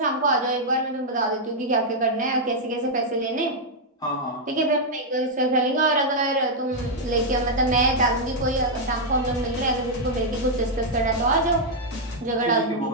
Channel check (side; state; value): both; normal; correlation -0.03